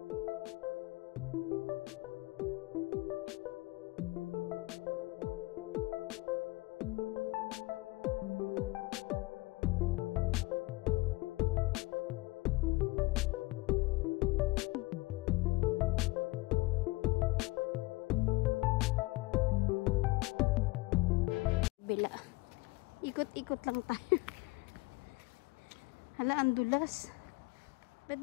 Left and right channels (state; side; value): quieter; right; 21.9 dB